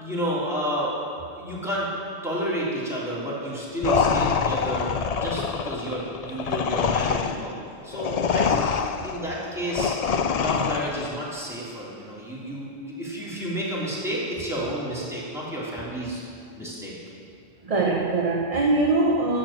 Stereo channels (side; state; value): both; normal; correlation -0.03